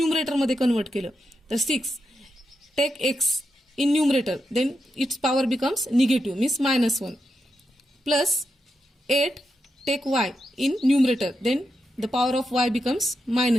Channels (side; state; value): both; normal; correlation 0.86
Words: मध्ये कन्वर्ट केलं तर 6 take x in numerator then its power becomes negative means -1 plus 8 take y in numerator then the power of y becomes